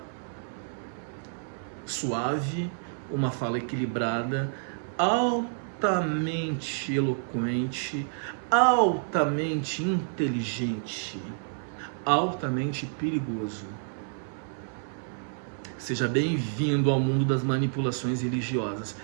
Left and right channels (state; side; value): silent; left; 59 dB below the other